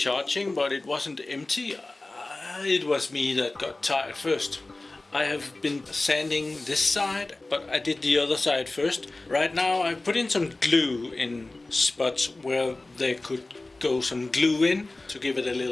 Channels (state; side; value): quieter; right; 3.0 dB